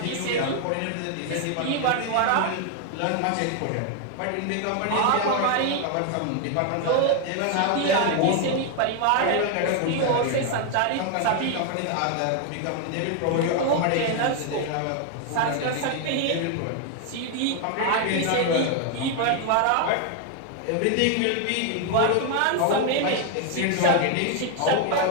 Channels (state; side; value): different; both; correlation 0.01